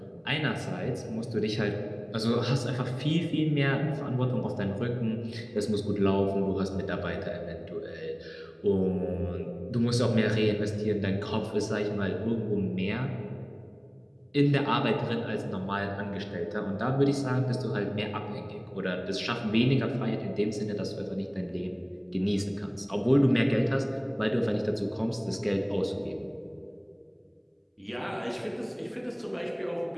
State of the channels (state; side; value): identical; both; correlation 1.00